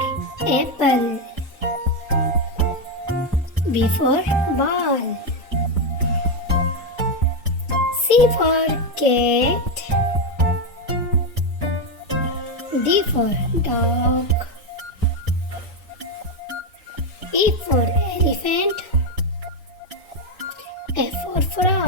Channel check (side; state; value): both; normal; correlation 0.07